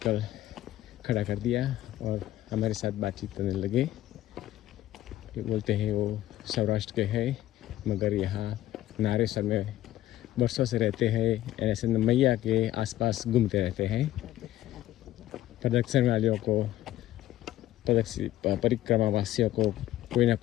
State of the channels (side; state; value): right; quieter; 14.0 dB